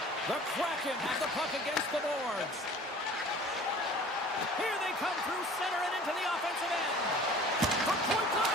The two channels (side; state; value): both; normal; correlation 0.46